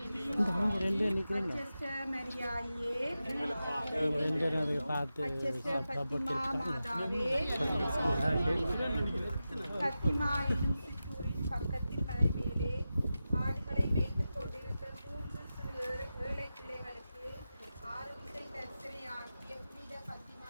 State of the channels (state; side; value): inverted; both; correlation -0.92